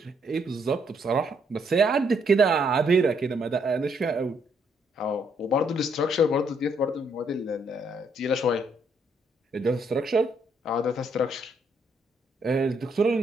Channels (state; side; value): normal; both; correlation 0.72